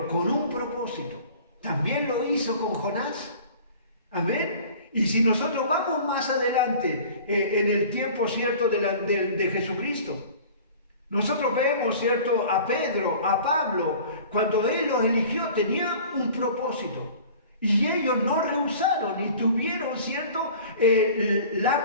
con un propósito. También lo hizo con Jonás. Amén. Y si nosotros vamos más adelante, en el tiempo, ¿cierto?, de Jesucristo, nosotros vemos, ¿cierto?, a Pedro, a Pablo, cuando Él los eligió, tenía un propósito. Y ellos no rehusaron y tuvieron, ¿cierto?,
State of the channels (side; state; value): both; inverted; correlation -0.45